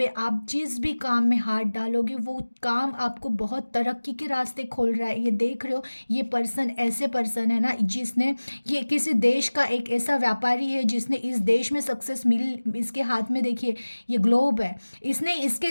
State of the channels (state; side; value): inverted; both; correlation -1.00